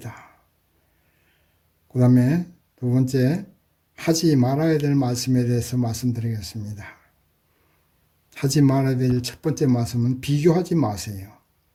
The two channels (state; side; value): identical; both; correlation 1.00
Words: 그 다음에 두 번째, 하지 말아야 될 말씀에 대해서 말씀드리겠습니다. 하지 말아야 될 첫 번째 말씀은 비교하지 마세요.